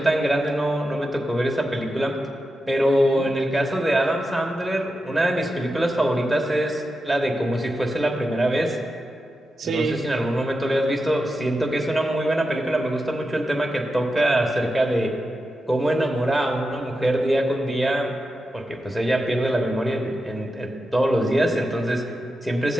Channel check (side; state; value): both; normal; correlation 0.89